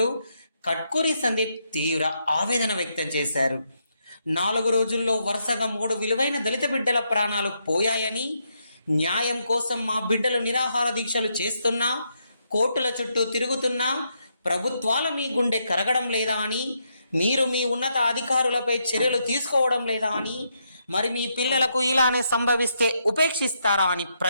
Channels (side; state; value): both; inverted; correlation -0.79